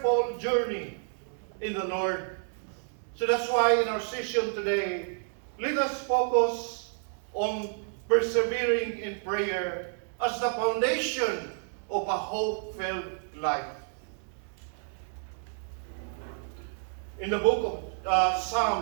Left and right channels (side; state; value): left; silent; 58 dB below the other